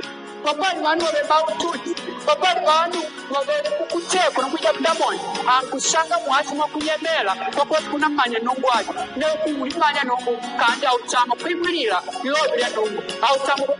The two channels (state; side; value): identical; both; correlation 1.00